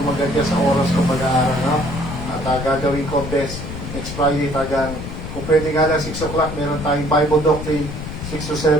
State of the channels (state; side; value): noise; left; rumble, 8 dB below the sound